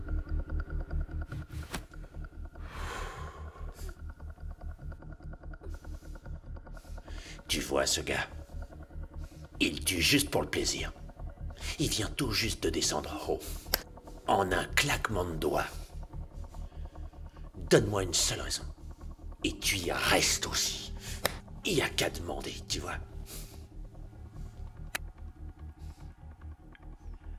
Tu vois ce gars? Il tue juste pour le plaisir. Il vient tout juste de descendre en haut. En un claquement de doigts. Donne-moi une seule raison. Et tu y restes aussi. Il y a qu'à demander, tu vois.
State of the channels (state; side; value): identical; both; correlation 1.00